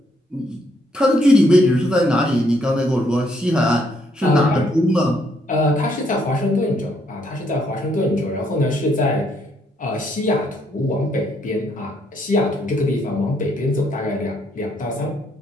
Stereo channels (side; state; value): both; normal; correlation 0.71